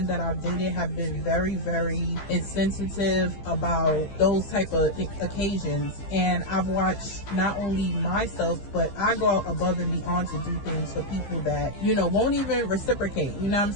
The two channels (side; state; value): right; late; 15 ms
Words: that I've dated have been very, very insensitive about those type of occasions. And I've watched not only myself, but I go out above and beyond to do things for people that, you know, won't even reciprocate. You know what I'm